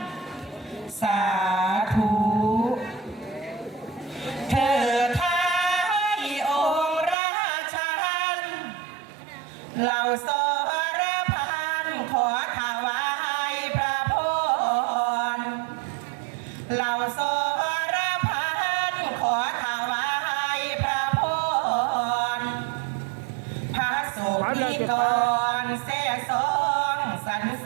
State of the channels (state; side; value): drops out; left; at 7.2 s